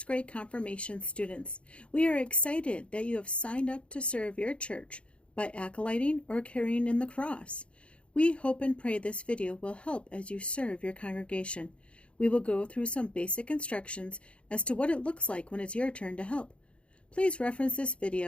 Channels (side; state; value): right; late; 0.059 ms